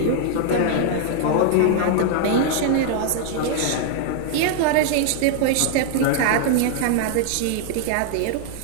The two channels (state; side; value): different; both; correlation 0.00